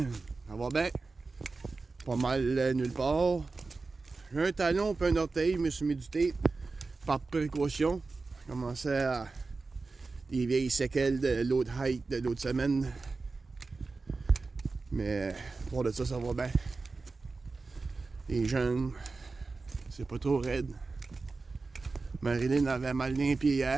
va bien. Pas mal nulle part. J'ai un talon et un orteil, je me suis mis du tape par précaution. J'ai commencé à des vieilles séquelles de l'autre hike de l'autre semaine. Mais pour de ça, ça va bien. Les jeunes, c'est pas trop raide. Marilyn avait mal les pieds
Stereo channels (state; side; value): quieter; left; 3.9 dB